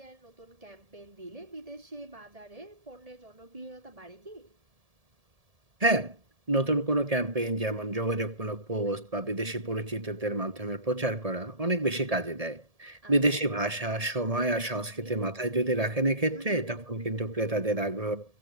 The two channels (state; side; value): late; left; 1.7 ms